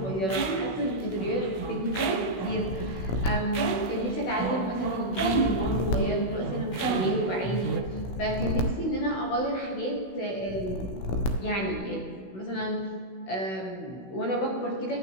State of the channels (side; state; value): right; late; 16 ms